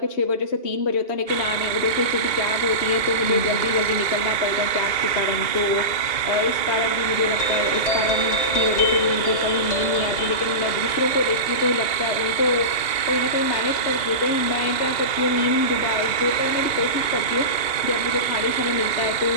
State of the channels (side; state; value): right; late; 2.8 ms